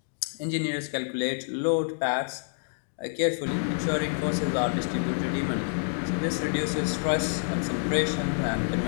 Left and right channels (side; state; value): right; silent; digital silence